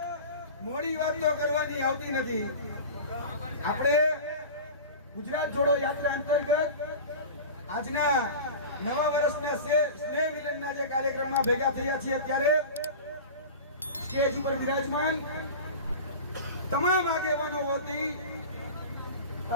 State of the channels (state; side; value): inverted; both; correlation -0.33